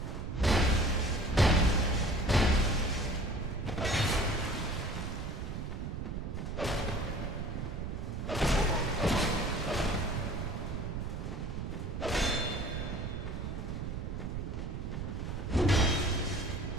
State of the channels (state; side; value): noise; right; rumble, 4 dB below the sound